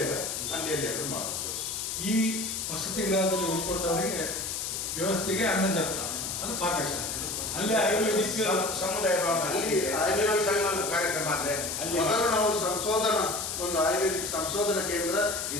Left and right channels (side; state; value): left; noise; hiss, 3 dB below the sound